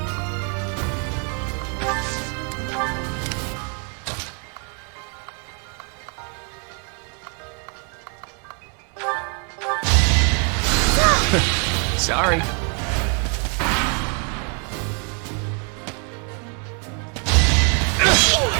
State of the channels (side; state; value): left; quieter; 39.1 dB